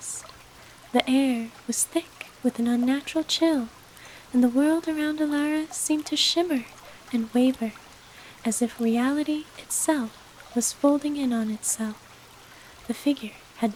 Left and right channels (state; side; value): identical; both; correlation 1.00